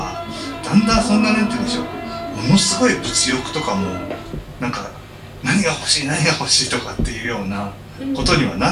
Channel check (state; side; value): identical; both; correlation 1.00